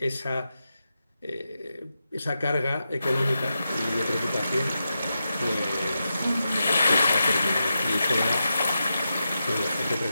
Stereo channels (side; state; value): both; inverted; correlation -0.89